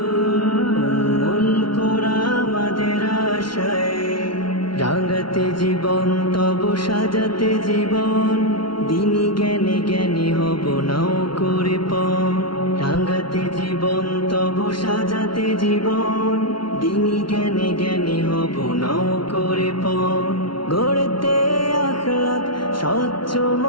উম্মুল কোরা আমাদের আশায়। রাঙাতে জীবন তব সাজাতে জীবন, দিনী জ্ঞানে জ্ঞানী হব নাও করে পণ। রাঙাতে জীবন তব সাজাতে জীবন, দিনী জ্ঞানে জ্ঞানী হব নাও করে পণ। গড়তে আখলাক স্বচ্ছ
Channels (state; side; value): late; right; 0.73 ms